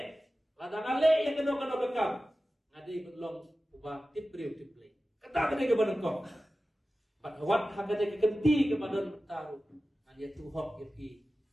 ladang ale yang keno bekam ngadi belum ubah tipriu tiplay kata kene ke banengkong Pat hawat hakane kekenti kepada tahu. Dia tu hok yapi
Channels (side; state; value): both; normal; correlation 0.95